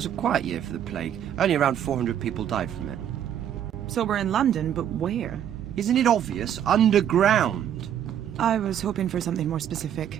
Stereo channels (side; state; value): left; quieter; 9.9 dB